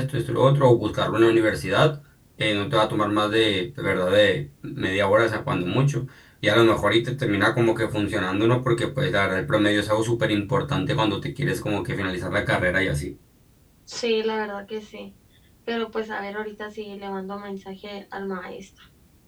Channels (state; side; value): identical; both; correlation 1.00